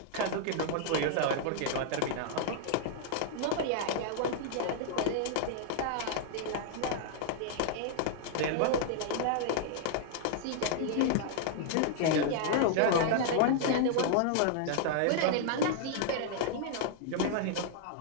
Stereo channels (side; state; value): both; different; correlation -0.01